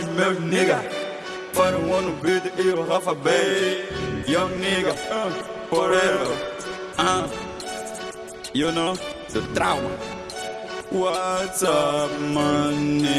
meus nigga. Para o ano beat e o Rafa Bay. Young nigga, forever. You know, the trauma. What's up, my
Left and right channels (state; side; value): identical; both; correlation 1.00